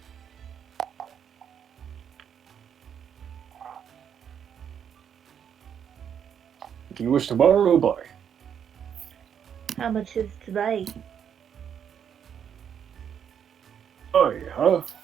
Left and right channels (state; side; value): quieter; left; 8.3 dB